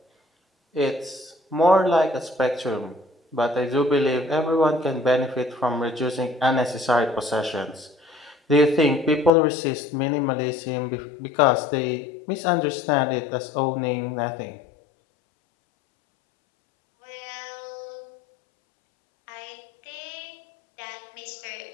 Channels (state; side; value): drops out; right; at 9.3 s